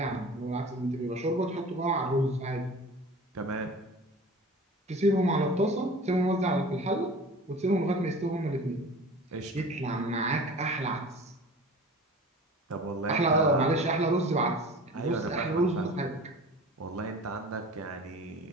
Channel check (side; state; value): both; normal; correlation 0.40